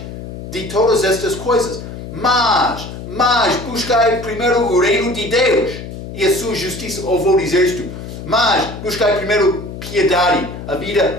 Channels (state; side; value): noise; left; hum, 10 dB below the sound